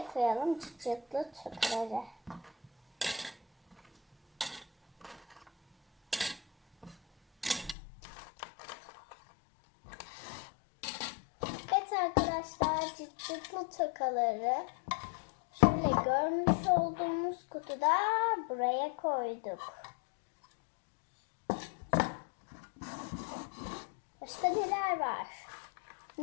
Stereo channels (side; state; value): right; drops out; at 7.8 s